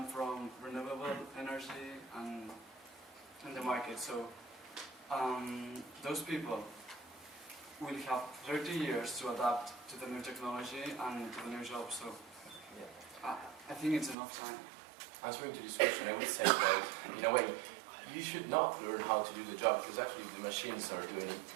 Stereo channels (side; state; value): left; drops out; at 14.2 s